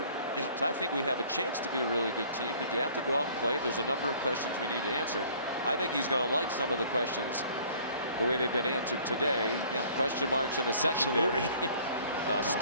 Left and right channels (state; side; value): inverted; both; correlation -0.54